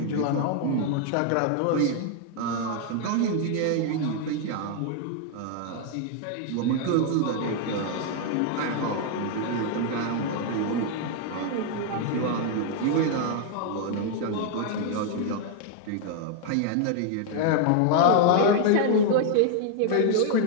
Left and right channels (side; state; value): both; different; correlation 0.00